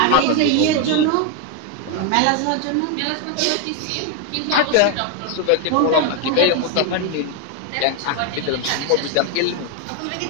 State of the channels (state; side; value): different; both; correlation 0.01